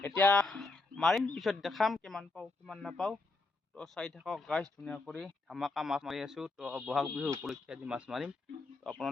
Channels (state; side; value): quieter; right; 3.4 dB